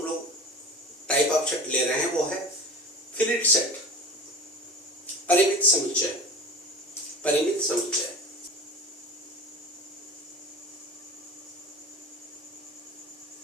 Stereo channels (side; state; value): both; normal; correlation 0.35